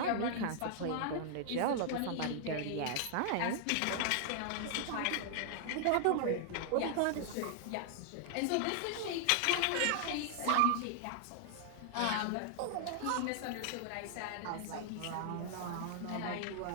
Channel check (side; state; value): both; different; correlation 0.00